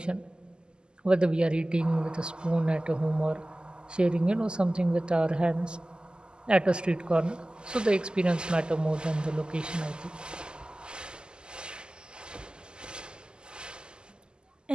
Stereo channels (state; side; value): late; left; 0.048 ms